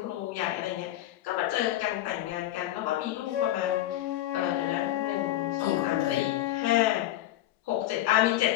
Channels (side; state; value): right; quieter; 14.2 dB